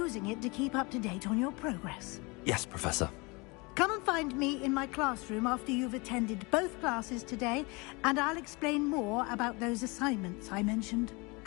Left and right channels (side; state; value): right; quieter; 27.3 dB